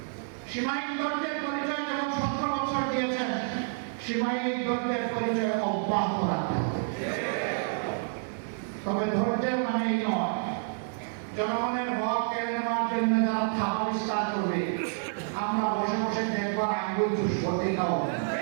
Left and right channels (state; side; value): silent; left; 59 dB below the other